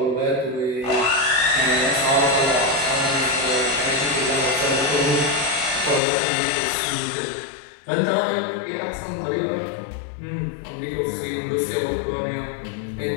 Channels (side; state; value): right; drops out; at 6.0 s